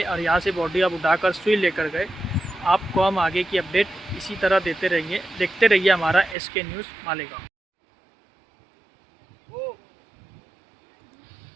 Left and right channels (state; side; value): drops out; left; at 6.4 s